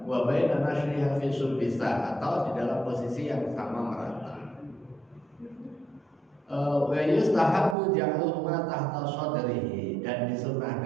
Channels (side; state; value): left; drops out; at 7.8 s